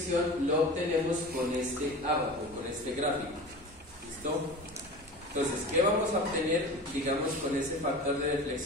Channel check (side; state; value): both; normal; correlation 0.34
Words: lo obtenemos con este abaco, con este gráfico. ¿Listo? Entonces, ¿qué vamos a obtener, digamos, con ese factor de